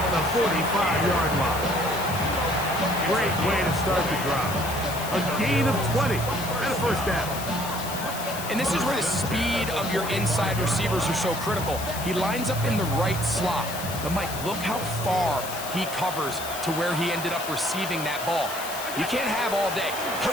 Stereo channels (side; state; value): left; noise; hiss, 9 dB below the sound